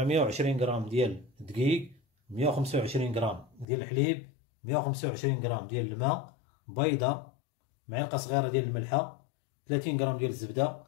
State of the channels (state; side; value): drops out; right; at 3.7 s